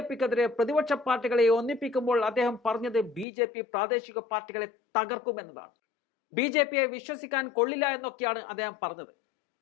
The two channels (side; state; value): right; drops out; at 3.2 s